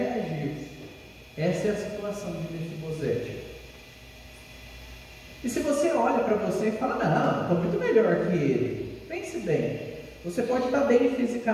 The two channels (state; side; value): identical; both; correlation 1.00